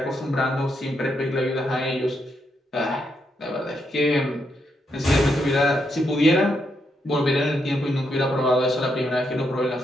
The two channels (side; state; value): both; normal; correlation 0.80